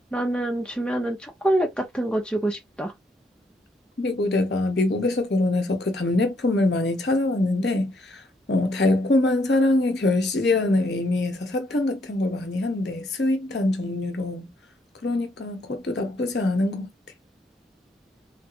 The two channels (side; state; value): both; normal; correlation 0.73